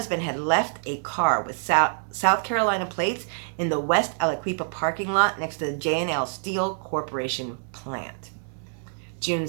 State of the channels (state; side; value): silent; left; digital silence